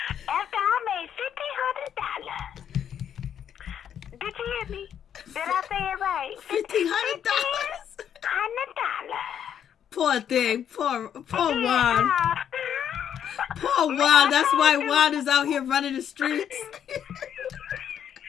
after I made $1,500. Did you hear me? Did I say it right? $1,500. $1,500. Poor thing. Poor Juan. Poor Juan. That's why Juan is out here running the streets.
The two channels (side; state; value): right; quieter; 9.1 dB